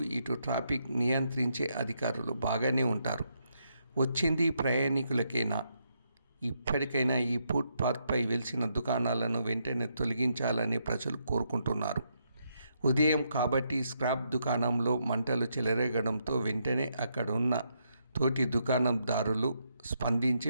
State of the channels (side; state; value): both; inverted; correlation -0.78